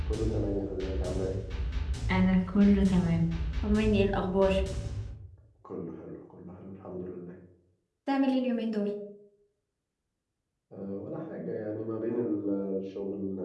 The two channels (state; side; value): identical; both; correlation 1.00